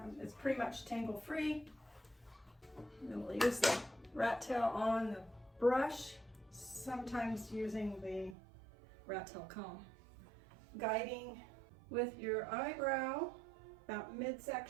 it's pretty much tangle free. And we'll use the rat tail on the brush, sometimes using the rat tail comb. Guiding with your eyebrow about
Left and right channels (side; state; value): left; drops out; at 8.3 s